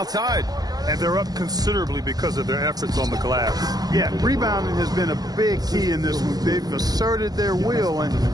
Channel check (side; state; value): left; late; 0.19 ms